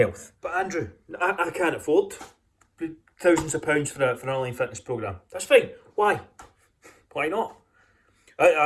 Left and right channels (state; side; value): identical; both; correlation 1.00